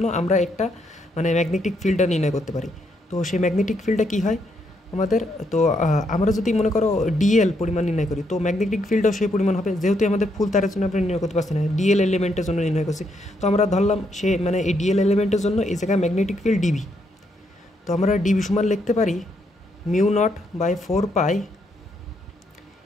আমরা একটা মানে ম্যাগনেটিক ফিল্ডটা নির্ণয় করতে পারি। তো সেই ম্যাগনেটিক ফিল্ডটা কী হয় আমাদের, তো আমরা যদি মনে করো ডিএল পরিমাণ নির্ণয় করি, তো ম্যাগনেটিক ফিল্ডও সেই পরিমাণ হবে, যেহেতু আমাদের ফুল তারের জন্য আমরা নির্ণয় করতে পারছি না, ডিএল এলিমেন্টের জন্য নির্ণয় করছি। তো আমরা ধরলাম সে মানে এই ডিএল এলিমেন্টের জন্য এই জায়গায় ম্যাগনেটিক ফিল্ড ডিবি। তো আমরা ডিবি সমান লিখতে পারি mu nought by 4 pi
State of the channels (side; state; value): both; normal; correlation 0.76